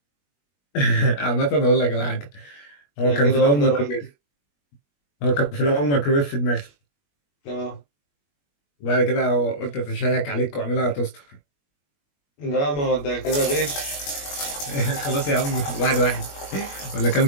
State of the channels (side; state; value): right; late; 21 ms